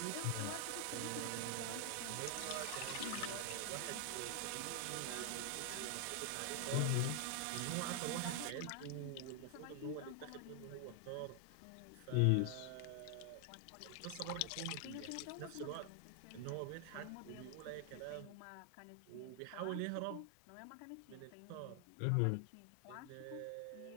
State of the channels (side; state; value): both; different; correlation 0.00